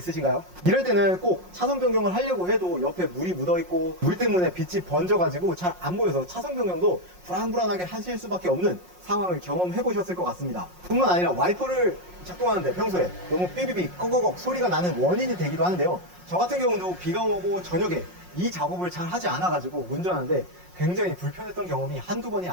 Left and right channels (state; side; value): late; left; 5.5 ms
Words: 이럴 때는 꼭 차선 변경을 하려고 해도 옆에 물이 묻어있고 물 때문에 빛이 번져가지고 잘 안 보여서 차선 변경도 불안불안하게 하실 수밖에 없는 상황을 경험해 보셨을 것 같습니다. 뿐만 아니라 와이퍼를 작동하는데 평소에 너무 삐비비 꺼거걱 소리가 나는 원인이 되기도 하는데요. 저 같은 경우도 비가 오고 저녁에 이 작업을 잘 하지 않아가지고 운전하는데 굉장히 불편했던 경험이 한두 번이